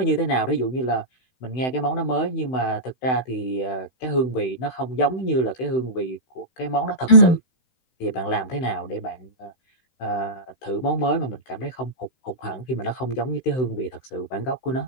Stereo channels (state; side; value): late; right; 16 ms